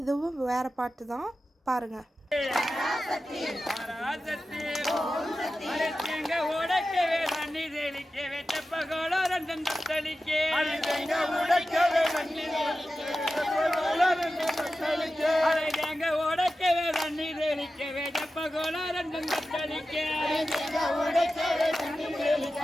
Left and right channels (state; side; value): normal; both; correlation 0.93